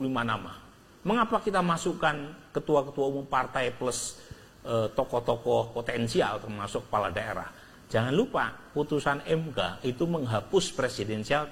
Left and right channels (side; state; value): both; identical; correlation 1.00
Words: nama. Mengapa kita masukkan ketua-ketua umum partai plus tokoh-tokoh potensial termasuk kepala daerah? Jangan lupa putusan MK itu menghapus presidensial